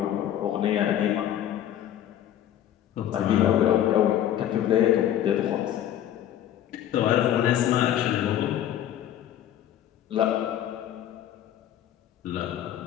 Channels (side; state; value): right; quieter; 11.3 dB